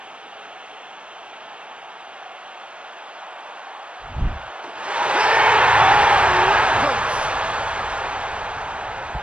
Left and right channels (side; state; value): left; late; 0.059 ms